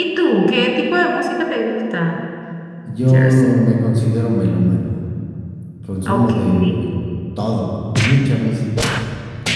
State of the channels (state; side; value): identical; both; correlation 1.00